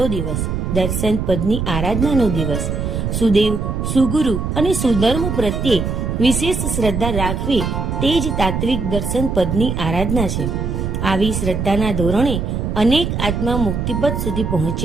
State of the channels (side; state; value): right; noise; rumble, 2 dB below the sound